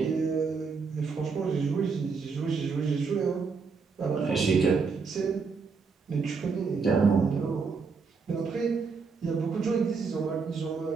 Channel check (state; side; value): quieter; left; 5.1 dB